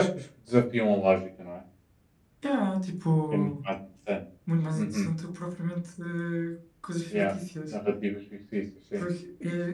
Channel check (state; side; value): identical; both; correlation 1.00